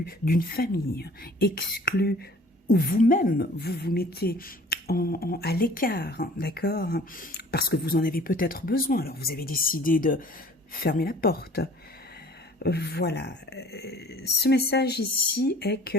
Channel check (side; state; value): both; normal; correlation 0.50